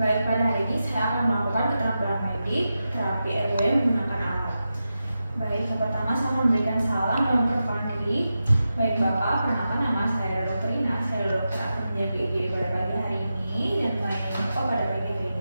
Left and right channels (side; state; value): both; inverted; correlation -0.90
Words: Baik, pada hari ini saya akan melakukan keterampilan medik terapi airway menggunakan alat. Baik, yang pertama saya memberikan salam dan memperkenalkan diri. Baik Bapak, perkenalkan nama saya Dr. Ina. Saya dokter Akhirnya BG pada pagi hari ini dan melayani Bapak pada pagi hari